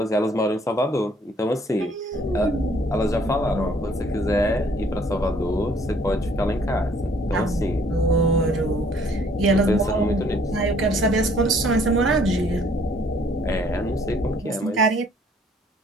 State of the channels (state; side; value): normal; both; correlation 0.60